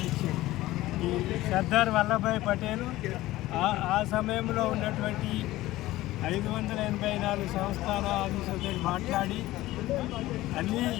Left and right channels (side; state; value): right; quieter; 16.9 dB